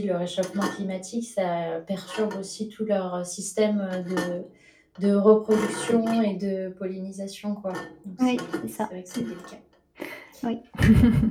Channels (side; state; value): both; identical; correlation 1.00